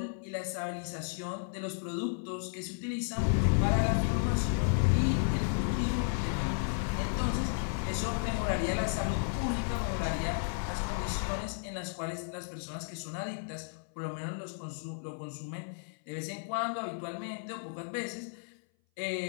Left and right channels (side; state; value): right; silent; 56 dB below the other